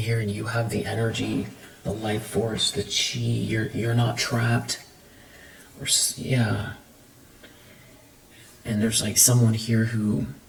and you have the energy, the life force, the chi, you're not trapped. Or, yeah. And there's like someone here who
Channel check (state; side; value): identical; both; correlation 1.00